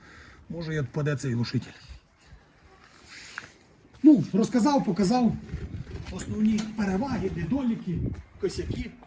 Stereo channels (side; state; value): both; identical; correlation 1.00